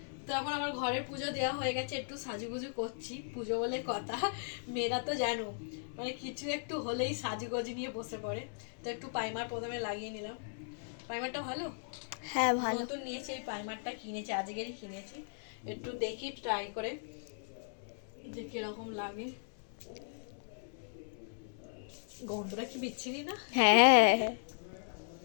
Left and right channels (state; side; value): silent; right; 53 dB below the other